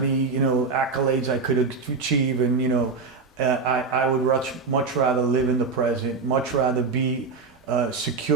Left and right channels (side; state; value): left; quieter; 4.5 dB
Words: accolades I could achieve, and I would much rather live in the present, much rather be